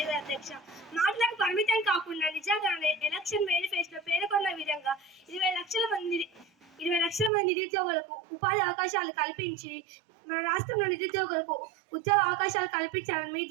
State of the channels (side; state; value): left; drops out; at 7.3 s